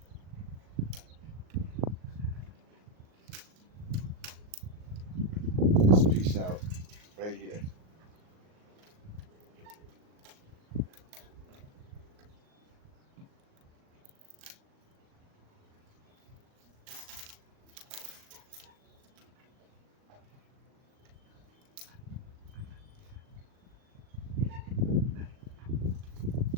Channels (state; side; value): late; left; 38 ms